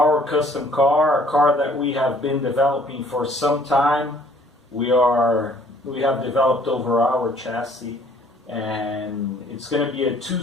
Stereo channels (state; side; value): normal; both; correlation 0.58